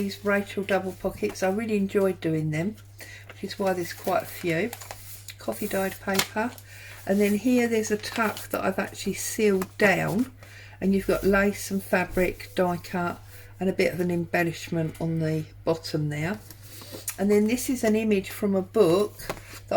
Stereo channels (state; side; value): identical; both; correlation 1.00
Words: Rachel double pockets. I really enjoyed doing them, which is why there's quite a few. Coffee dyed paper, and then here there's a tuck that I've actually sealed down, and you've got lace and fabric, die cut, and a bit of an embellishment on the bottom there. And then this is an image from a book